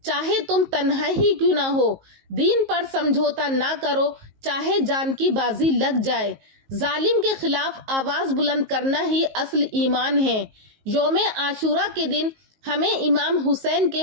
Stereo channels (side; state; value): left; late; 19 ms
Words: چاہے تم تنہا ہی کیوں نہ ہو، دین پر سمجھوتا نہ کرو، چاہے جان کی بازی لگ جائے۔ ظالم کے خلاف آواز بلند کرنا ہی اصل ایمان ہے۔ یوم عاشورہ کے دن ہمیں امام حسین کے